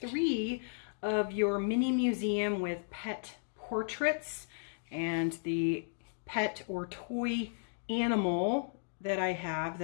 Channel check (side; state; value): right; silent; digital silence